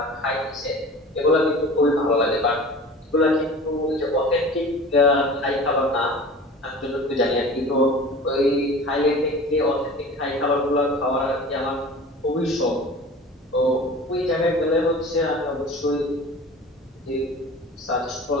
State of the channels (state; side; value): normal; both; correlation 0.39